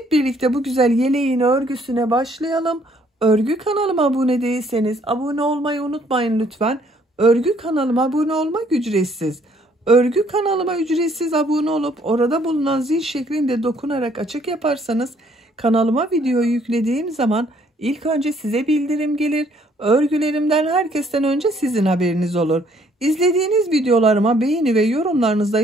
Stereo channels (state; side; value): normal; both; correlation 0.64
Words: birlikte bu güzel yeleğin örgüsüne başlayalım. Örgü kanalıma abone değilseniz abone olmayı unutmayın lütfen. Örgü kanalıma abone olmak ücretsiz. Örgü kanalıma ücretsiz abone olup orada bulunan zil şeklinde dokunarak açık yaparsanız kanalıma video yüklediğim zaman ilk önce size bildirim gelir. Örgülerimden herkesten önce sizin haberiniz olur. İzlediğiniz videolarıma beğeni ve yorumlarınızı da